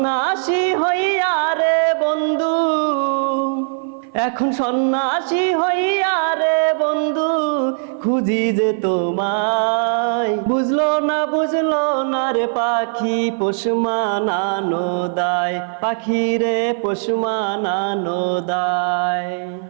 হইয়া রে বন্ধু, এখন সন্ন্যাসী হইয়া রে বন্ধু খুঁজি যে তোমায়। বুঝলো না রে পাখি পোষ মানানো দায়, পাখি রে পোষ মানানো দায়।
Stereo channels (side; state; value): left; silent; 56 dB below the other